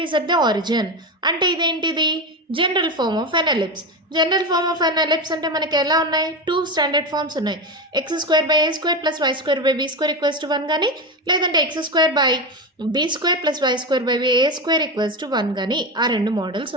is at the origin అంటే ఇదేంటిది general form of an ellipse. General form of an ellipse అంటే మనకి ఎలా ఉన్నాయి 2 స్టాండర్డ్ ఫార్మ్స్ ఉన్నాయి. x² + a² + b² equals to 1 కానీ లేదంటే x² / b² + y² / a² equals to 1 కానీ ఆ రెండు మోడల్స్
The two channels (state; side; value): normal; both; correlation 0.18